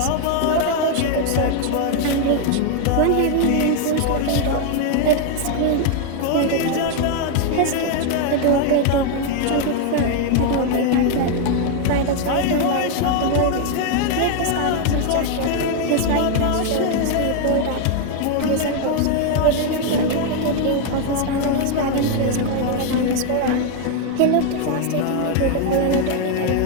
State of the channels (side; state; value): both; different; correlation 0.01